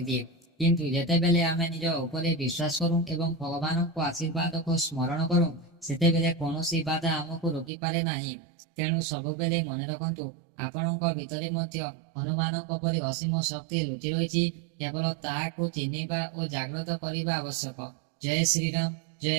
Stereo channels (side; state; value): left; drops out; at 7.7 s